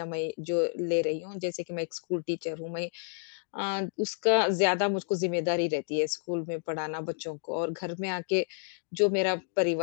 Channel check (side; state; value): right; silent; digital silence